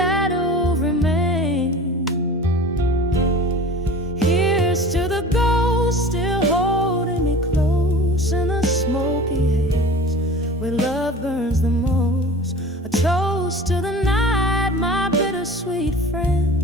remains. Here's to the ghost still holding me close in the smoky haze, where love burns the most. A toast to the night, my bittersweet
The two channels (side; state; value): both; normal; correlation 0.39